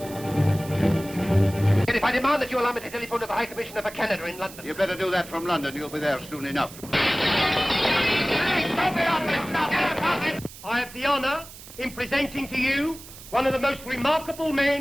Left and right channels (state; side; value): noise; right; hiss, 16 dB below the sound